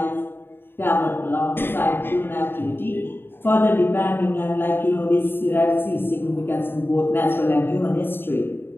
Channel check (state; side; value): late; right; 0.10 ms